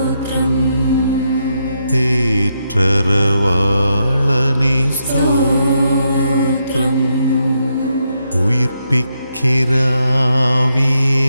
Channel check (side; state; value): both; inverted; correlation -0.81